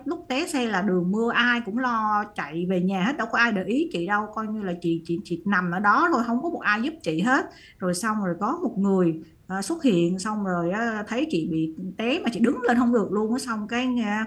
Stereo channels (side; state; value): both; identical; correlation 1.00